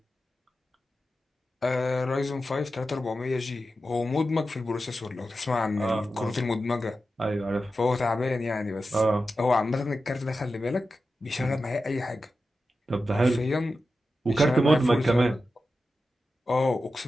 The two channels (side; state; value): both; normal; correlation 0.91